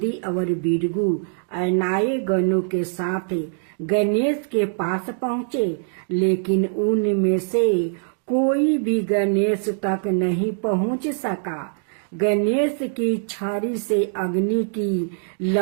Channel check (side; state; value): left; silent; digital silence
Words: और बिरगू अनाए गणों के साथ गणेश के पास पहुँचे, लेकिन उनमें से कोई भी गणेश तक नहीं पहुंच सका। गणेश की छड़ी से अग्नि की